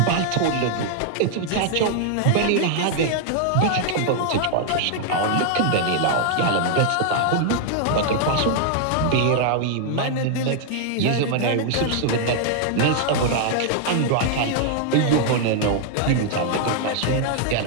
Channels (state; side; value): different; both; correlation 0.00